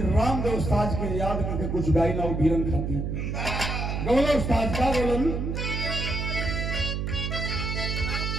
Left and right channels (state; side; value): noise; right; hum, 2 dB below the sound